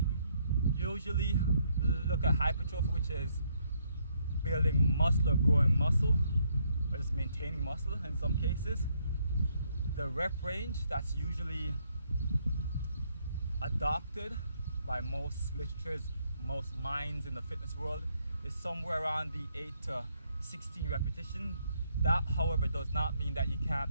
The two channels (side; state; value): both; inverted; correlation -0.72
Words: usually look at hypertrophy, which is building muscle or growing muscle, or just maintaining muscle in some cases. The rep range that's usually adopted by most literatures, most minds in the fitness world, is somewhere around the 8 to 16 repetition. That, however, does not mean that you